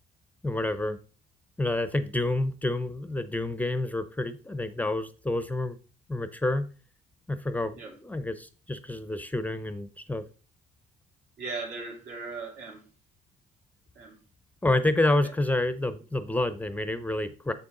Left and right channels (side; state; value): both; normal; correlation 0.85